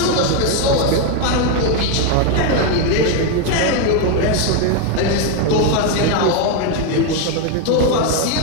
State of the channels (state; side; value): different; both; correlation 0.01